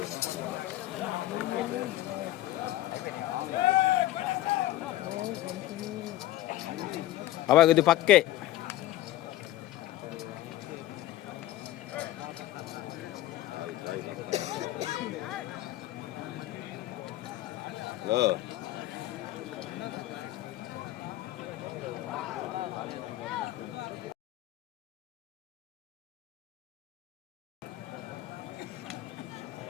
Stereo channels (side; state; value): right; quieter; 15.1 dB